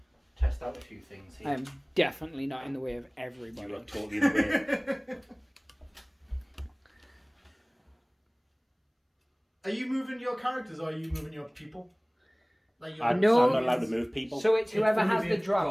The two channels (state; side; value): identical; both; correlation 1.00